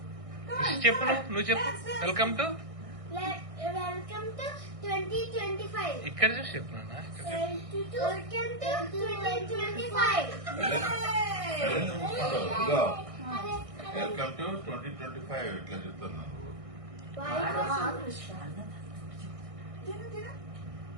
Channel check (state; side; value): late; left; 1.6 ms